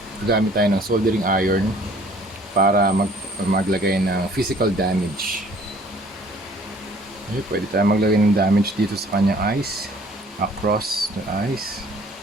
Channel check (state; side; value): normal; both; correlation 0.55